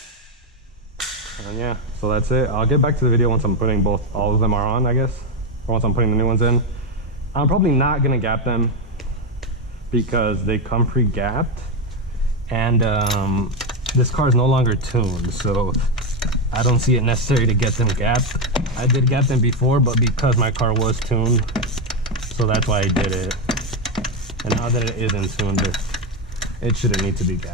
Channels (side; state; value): both; normal; correlation 0.08